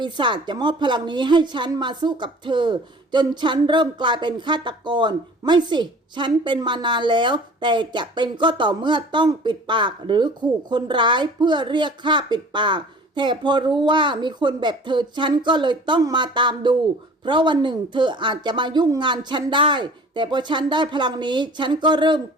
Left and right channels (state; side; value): normal; both; correlation 0.45